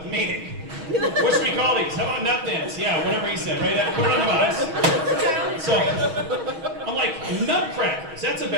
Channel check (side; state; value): left; late; 6.3 ms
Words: the meeting. What should we call these? How about Nut Thins? Yeah, whatever he said, right? Put it on the box. So, I'm like, Nutcrackers. That's a